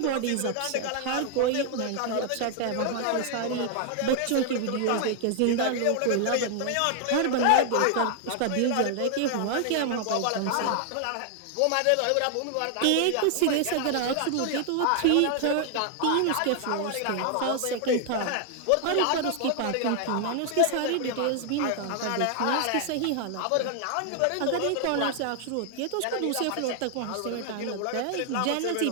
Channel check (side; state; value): both; different; correlation 0.00